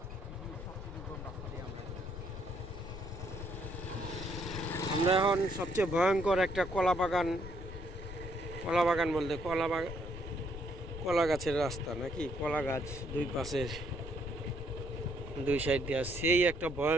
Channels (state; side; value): noise; left; rumble, 11 dB below the sound